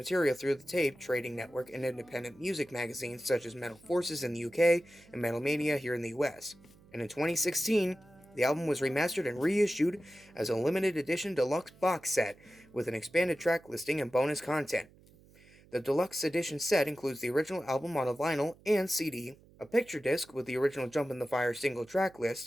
through the tape trading network and independent music magazines such as Metal Forces in the UK and Metal Mania here in the US. And in 2016, the album was remastered and reissued as a limited edition deluxe box set with an expanded track listing and bonus content. The deluxe edition set includes the original album on a vinyl and CD, a picture disc with the original Jump in the Fire single track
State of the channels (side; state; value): right; noise; hum, 26 dB below the sound